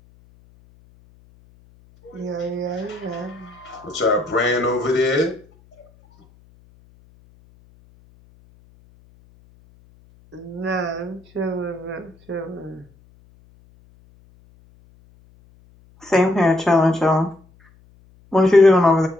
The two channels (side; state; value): left; noise; hum, 29 dB below the sound